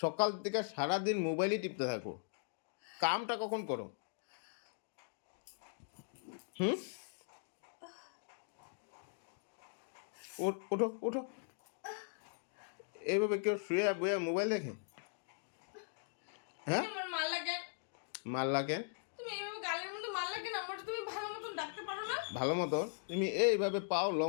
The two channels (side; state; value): right; silent; digital silence